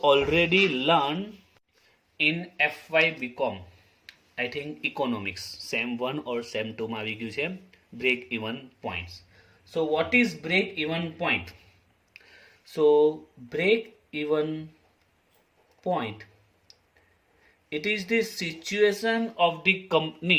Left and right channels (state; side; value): identical; both; correlation 1.00